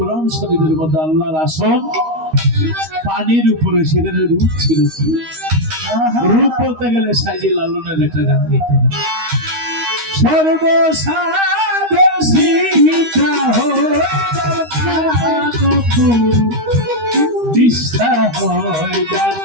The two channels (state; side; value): late; left; 13 ms